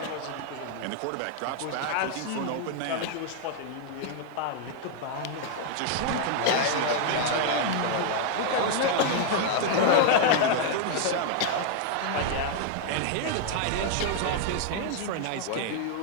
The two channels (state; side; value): different; both; correlation 0.00